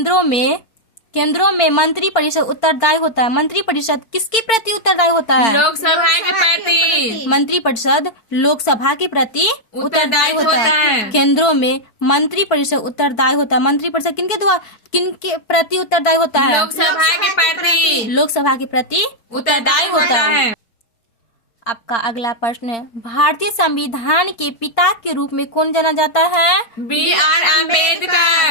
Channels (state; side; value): late; right; 4.4 ms